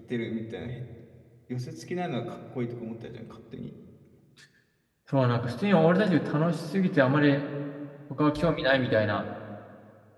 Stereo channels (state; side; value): identical; both; correlation 1.00